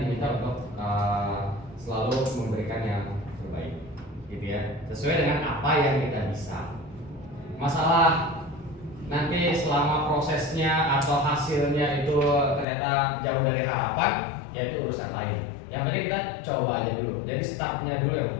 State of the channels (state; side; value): drops out; right; at 12.7 s